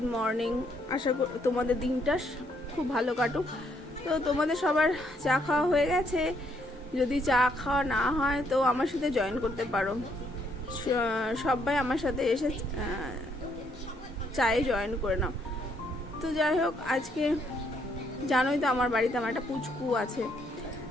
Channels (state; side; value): normal; both; correlation 0.71